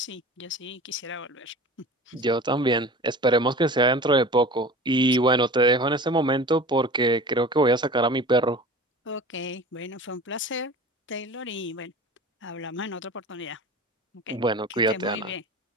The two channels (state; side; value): normal; both; correlation 0.38